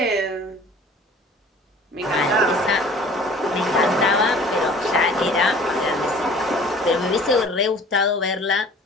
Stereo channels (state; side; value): normal; both; correlation 0.48